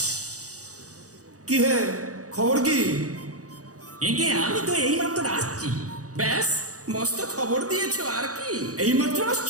কি হে, খবর কি? একে আমি তো এইমাত্র আসছি। ব্যাস, মস্ত খবর দিয়েছো আর কি। এইমাত্র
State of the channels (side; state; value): left; late; 0.66 ms